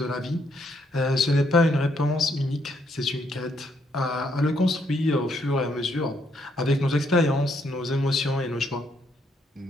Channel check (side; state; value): both; normal; correlation 0.73